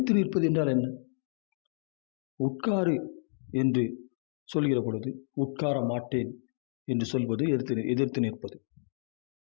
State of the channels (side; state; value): right; silent; digital silence